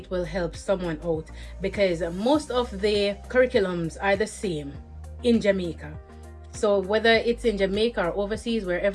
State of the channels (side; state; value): both; identical; correlation 1.00